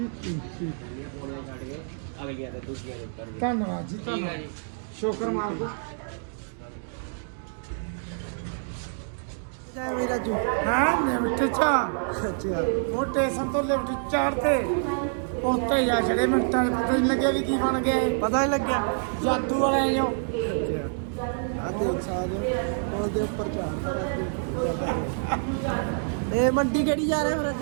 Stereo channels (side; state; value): left; silent; digital silence